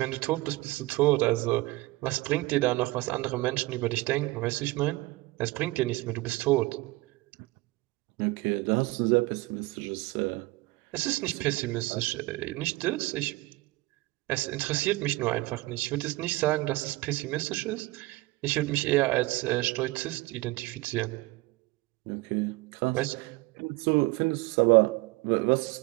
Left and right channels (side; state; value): left; quieter; 21.1 dB